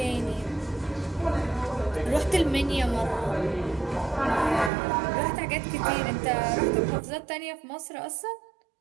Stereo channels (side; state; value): left; drops out; at 4.7 s